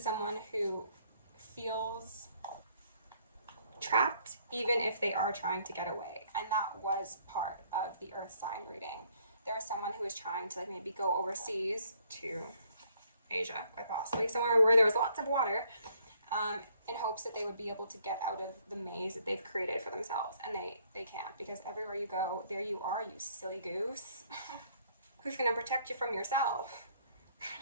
someone who feels trapped, even if they are trying to get away. And that was part of the earth sign reading. There was someone who was trying to like maybe go overseas to Asia, quite possibly, somewhere where there was lots of water, in hopes that they would be able to get out of the maze that they've created for themselves. And they can't, because everywhere you go, there you are, you silly goose. Who's going to protect you from yourself?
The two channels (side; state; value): both; inverted; correlation -0.65